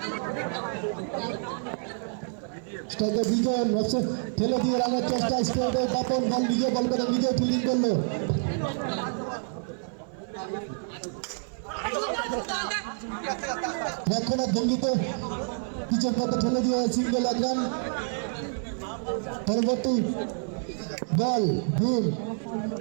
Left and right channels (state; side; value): silent; left; 57 dB below the other